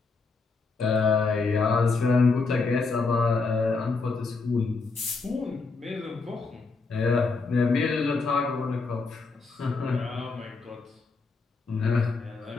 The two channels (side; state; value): right; quieter; 4.2 dB